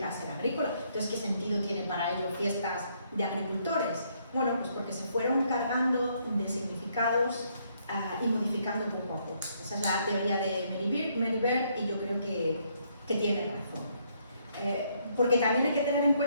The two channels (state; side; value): inverted; both; correlation -0.71